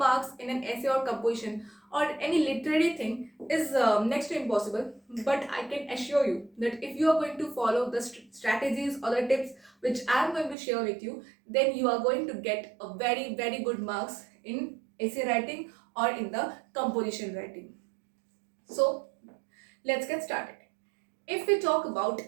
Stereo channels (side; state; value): left; drops out; at 10.6 s